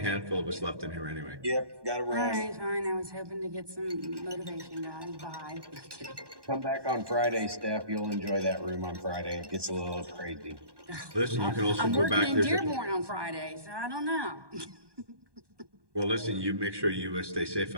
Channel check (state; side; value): late; left; 1.2 ms